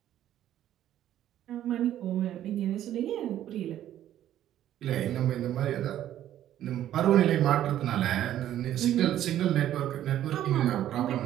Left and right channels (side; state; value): left; quieter; 12.0 dB